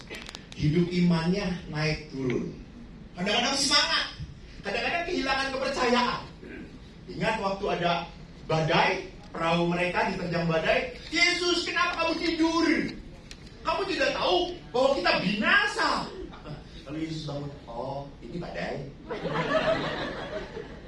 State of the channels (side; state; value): both; identical; correlation 1.00